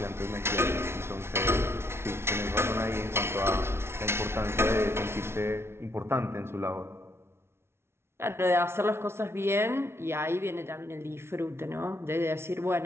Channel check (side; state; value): left; late; 0.12 ms